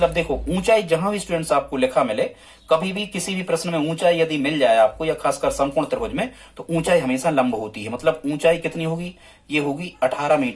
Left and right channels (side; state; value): both; identical; correlation 1.00